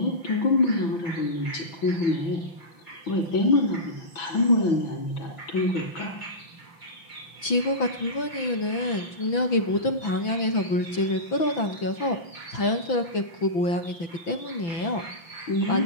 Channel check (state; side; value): late; right; 6.0 ms